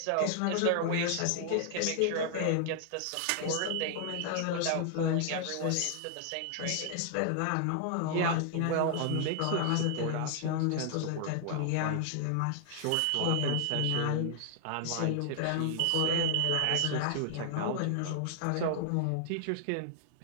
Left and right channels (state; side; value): different; both; correlation 0.00